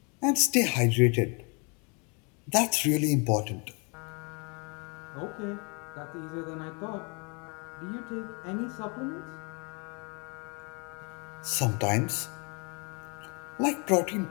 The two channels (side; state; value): right; quieter; 33.4 dB